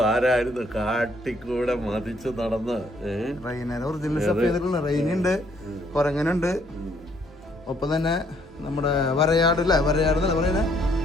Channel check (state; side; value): normal; both; correlation 0.67